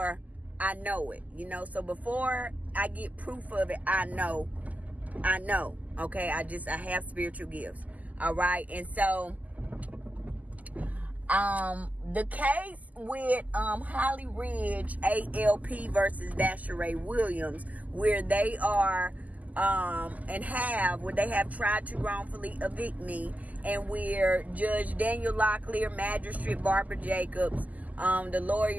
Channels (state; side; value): late; left; 0.077 ms